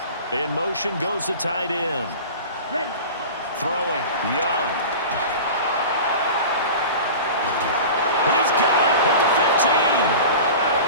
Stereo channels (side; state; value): both; inverted; correlation -0.34